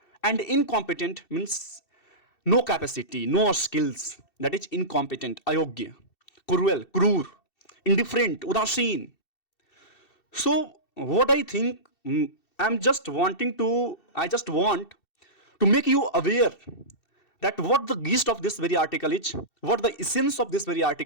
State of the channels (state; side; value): late; right; 2.7 ms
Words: and incompetent means no capacity, no skills. That is incompetent, ayogya. Cruel, cruel, indifferent, udasin. So what I think, I just want to make you aware that what the gist of this very article is, what the essence of this very